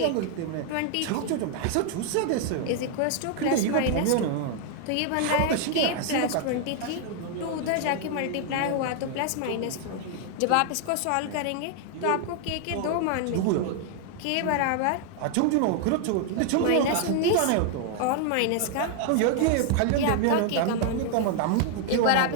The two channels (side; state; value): both; different; correlation 0.00